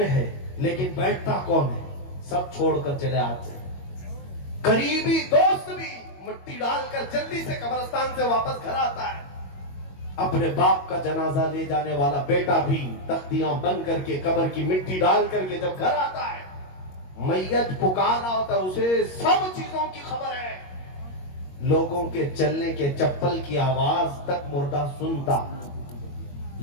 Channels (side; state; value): right; late; 22 ms